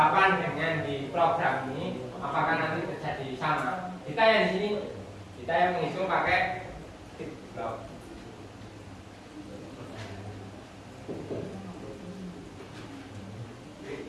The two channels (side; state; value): both; identical; correlation 1.00